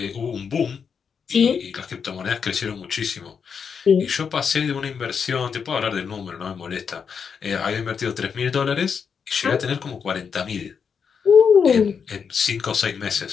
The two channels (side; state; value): right; quieter; 6.5 dB